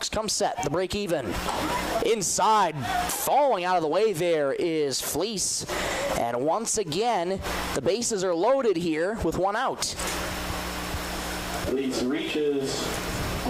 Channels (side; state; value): both; identical; correlation 1.00